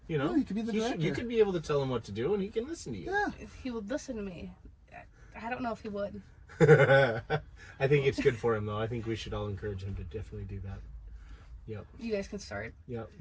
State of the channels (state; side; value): identical; both; correlation 1.00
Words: You know, you could be the director. You could be able to tell him what to do, and he can listen to you. Yeah. If he would listen to me. I don't know if he would. I think it's good for him, though. I think we should all encourage him to definitely do that. Yep. You guys can start. Yep.